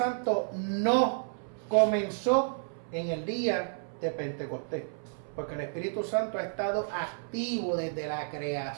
no comenzó en el día de Pentecostés, porque el Espíritu Santo ha estado activo desde la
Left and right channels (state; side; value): silent; left; 55 dB below the other